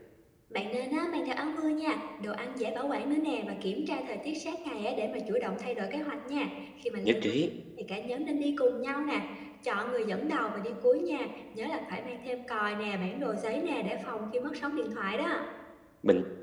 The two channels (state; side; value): identical; both; correlation 1.00